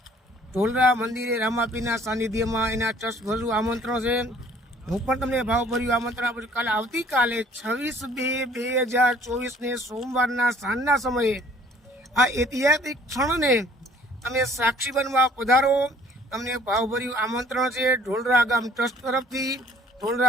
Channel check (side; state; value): both; normal; correlation 0.56